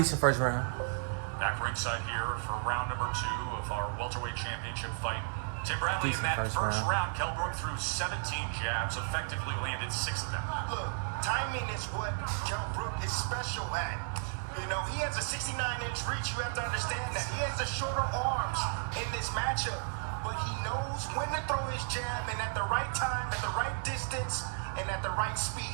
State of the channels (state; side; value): silent; left; 55 dB below the other